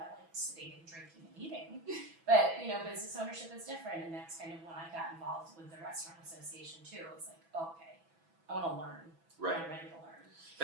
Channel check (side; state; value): left; late; 6.1 ms